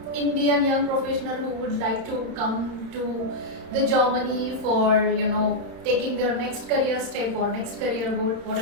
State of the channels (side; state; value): left; late; 31 ms